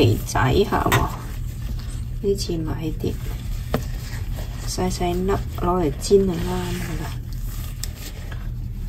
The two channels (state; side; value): identical; both; correlation 1.00